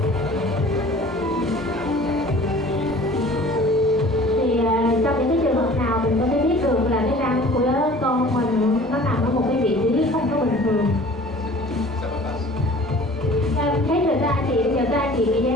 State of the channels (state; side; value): normal; both; correlation 0.47